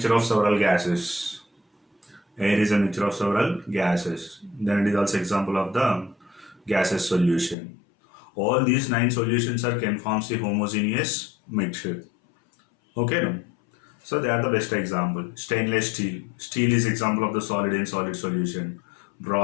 of several gases. Air is a mixture of several gases. Then it is also example of the gaseous solution. All these 9 solutions can form a homogeneous mixture. Okay, no? So they are the best example. Stainless steel. Steel is example of the solid in solid solution.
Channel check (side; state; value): right; drops out; at 7.6 s